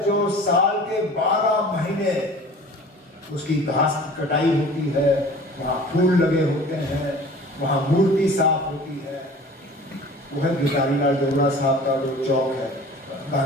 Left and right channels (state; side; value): normal; both; correlation 0.44